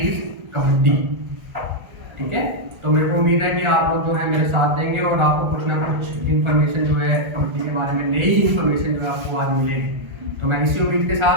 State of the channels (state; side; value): late; left; 1.4 ms